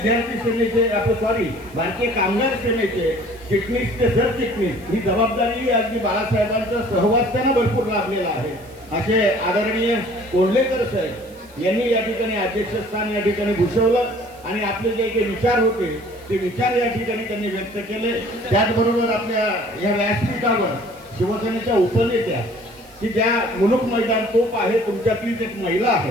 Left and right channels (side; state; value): right; noise; hiss, 26 dB below the sound